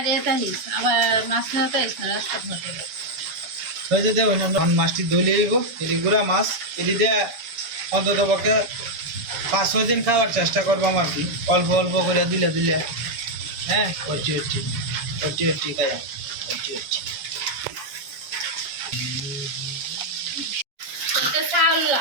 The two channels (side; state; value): left; late; 7.1 ms